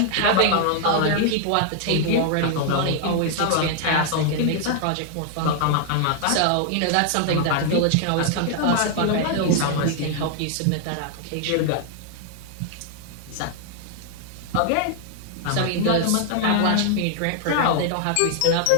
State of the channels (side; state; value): both; different; correlation 0.00